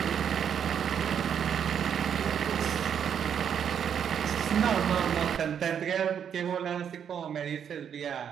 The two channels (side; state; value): left; quieter; 8.3 dB